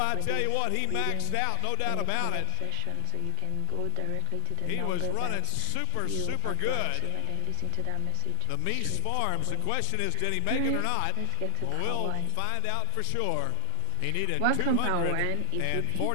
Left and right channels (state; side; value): different; both; correlation 0.00